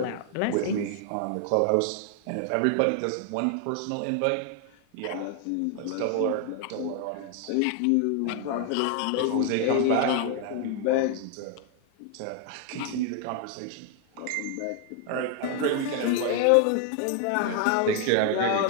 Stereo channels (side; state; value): both; different; correlation 0.00